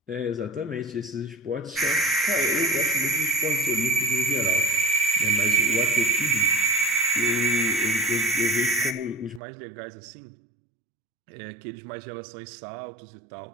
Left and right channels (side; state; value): left; drops out; at 9.4 s